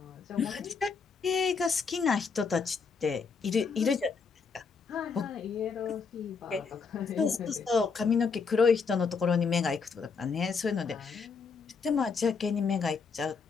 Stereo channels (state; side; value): quieter; right; 5.3 dB